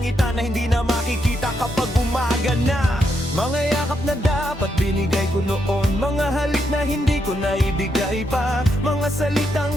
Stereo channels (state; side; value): normal; both; correlation 0.80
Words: na hindi na makikita kapag umaga na. Mga yakap na dapat binigay ko noon, mga halik na hindi ko naibigay pa, mga